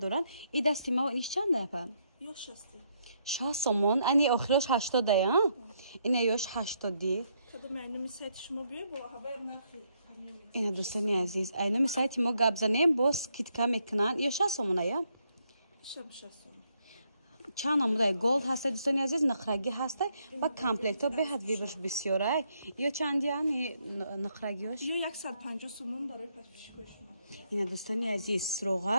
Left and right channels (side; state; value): both; inverted; correlation -0.75